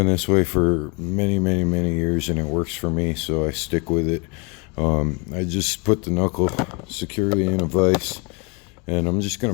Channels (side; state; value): right; quieter; 29.8 dB